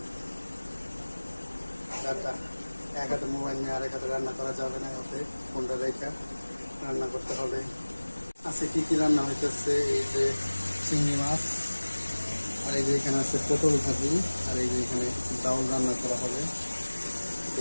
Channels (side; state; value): both; inverted; correlation -1.00